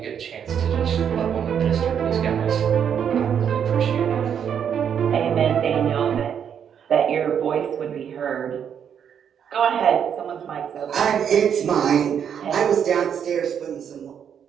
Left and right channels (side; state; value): left; quieter; 8.2 dB